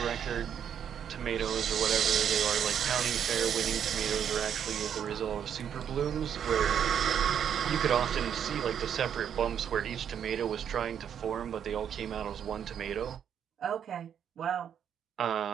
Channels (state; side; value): quieter; left; 8.7 dB